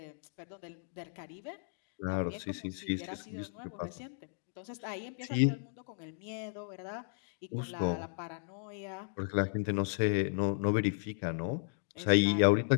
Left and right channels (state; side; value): silent; right; digital silence